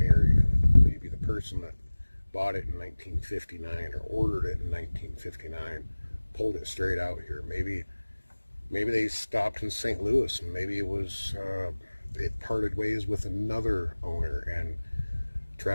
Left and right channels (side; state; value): both; inverted; correlation -1.00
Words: in it. Maybe the person that bought it in 1959 or ordered it in 1959 pulled it straight out here. Maybe they stopped in St. Louis, and maybe it parted ways with another owner, and